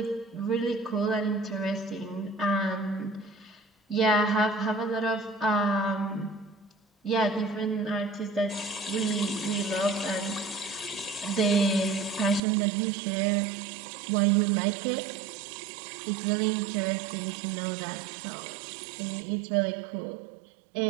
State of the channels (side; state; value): left; drops out; at 12.4 s